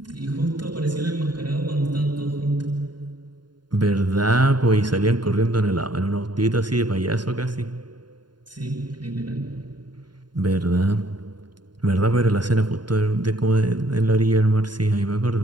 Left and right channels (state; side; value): late; left; 0.71 ms